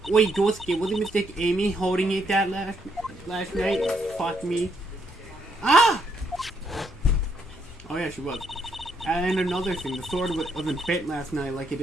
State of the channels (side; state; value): both; normal; correlation 0.74